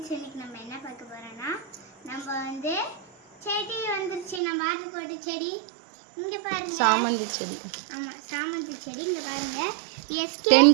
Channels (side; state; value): left; drops out; at 4.4 s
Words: இன்னைக்கு நம்ம என்ன பார்க்க போறோம்னா நம்ம வந்து செடி வந்துருச்சு. நம்ம ஆர்டர் போட்ட செடி இங்க பாருங்க, சாமந்தி செடி. ஆமா, சாமந்தி செடி. இங்க பாருங்க, SK 10